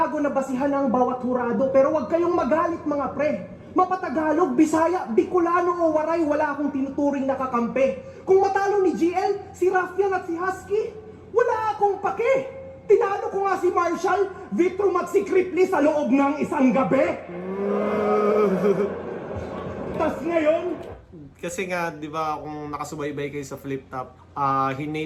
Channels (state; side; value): identical; both; correlation 1.00